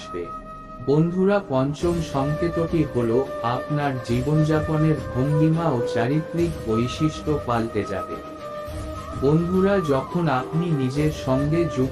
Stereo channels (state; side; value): identical; both; correlation 1.00